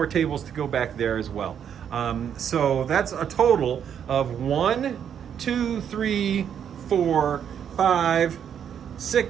tables to go back there as well. So that's a total of 1, 2, 3, 4, 5,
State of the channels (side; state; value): left; quieter; 8.6 dB